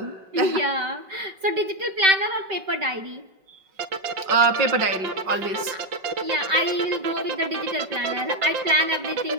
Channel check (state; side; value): late; left; 5.2 ms